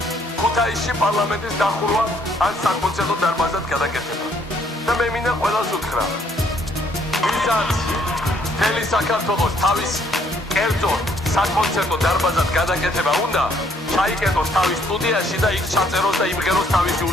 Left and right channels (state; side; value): normal; both; correlation 0.66